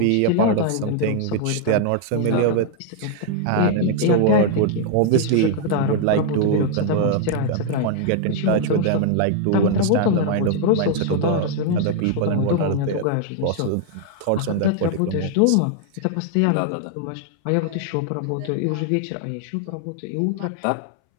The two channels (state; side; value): different; both; correlation 0.00